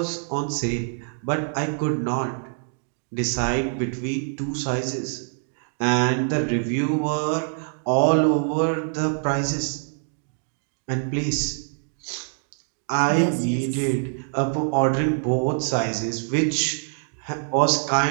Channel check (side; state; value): left; silent; 62 dB below the other